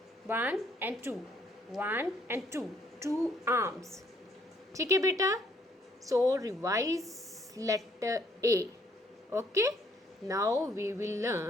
1 and 2, 1 and 2, 2 arms। ठीक है बेटा? So revise letter A. Okay, now we will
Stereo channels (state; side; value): normal; both; correlation 0.66